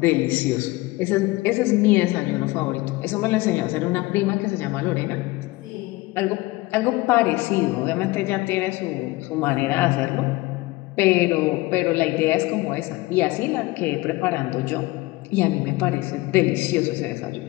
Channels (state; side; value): quieter; right; 20.6 dB